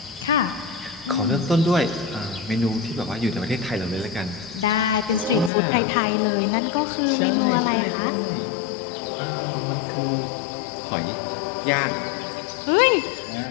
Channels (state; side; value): drops out; right; at 5.5 s